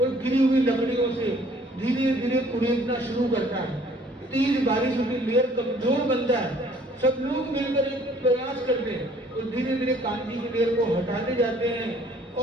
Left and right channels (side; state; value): both; normal; correlation 0.58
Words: और गिरी हुई लकड़ियों से धीरे धीरे कुरेदना शुरू करता है। तेज बारिश होती, लेयर कमजोर बनता है। सब लोग मिलकर एक प्रयास करते हैं और धीरे धीरे कांजी की लेयर को हटाते जाते हैं